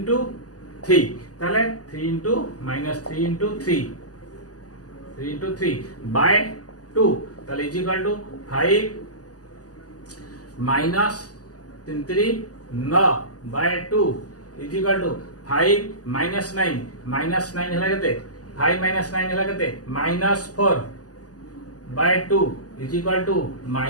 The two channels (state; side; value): late; right; 0.67 ms